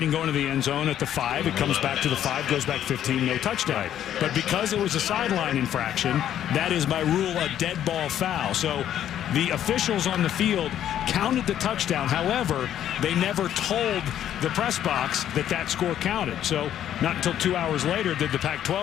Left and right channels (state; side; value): quieter; right; 10.8 dB